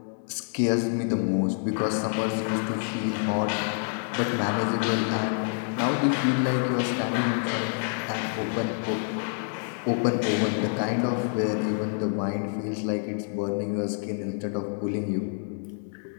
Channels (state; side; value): silent; right; 60 dB below the other